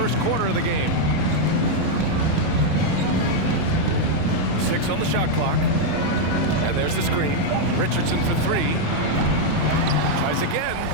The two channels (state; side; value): different; both; correlation 0.00